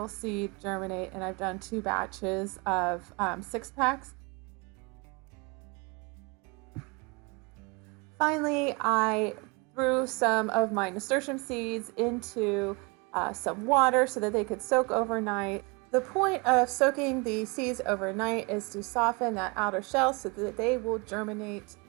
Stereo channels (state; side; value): quieter; left; 29.1 dB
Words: seed germinate, and I've done 2 batches of 6-packs. Finally, I threw some of my nasturtium seeds into some water so that they could soak overnight. The point of soaking the seeds overnight is to soften that outer shell so that they will germinate